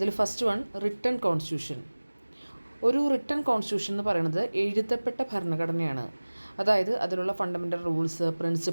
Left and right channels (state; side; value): inverted; both; correlation -1.00